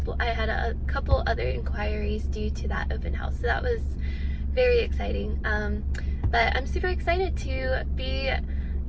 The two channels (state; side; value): identical; both; correlation 1.00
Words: I had a couple other inquiries due to that open house, so that was very exciting. But I'm super excited to be,